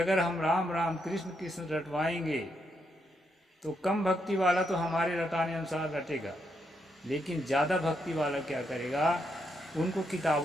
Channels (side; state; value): both; normal; correlation 0.79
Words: हम राम राम कृष्ण कृष्ण रटवाएंगे तो कम भक्ति वाला तो हमारे रटाने अनुसार रटेगा, लेकिन ज़्यादा भक्ति वाला क्या करेगा, उनको